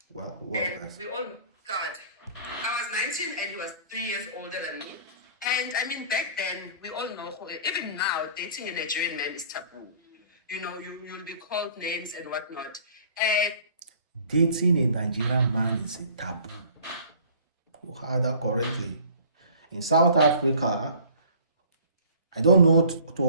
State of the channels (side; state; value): both; inverted; correlation -0.48